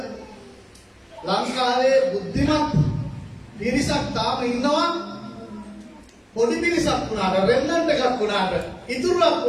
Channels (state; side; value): identical; both; correlation 1.00